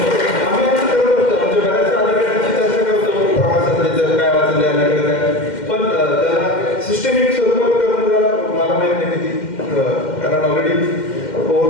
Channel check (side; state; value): right; late; 2.1 ms